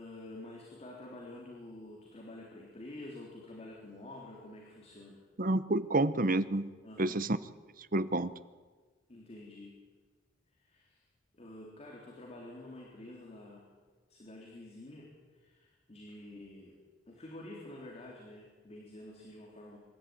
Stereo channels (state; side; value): normal; both; correlation 0.45